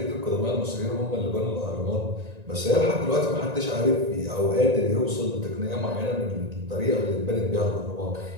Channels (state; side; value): late; left; 1.9 ms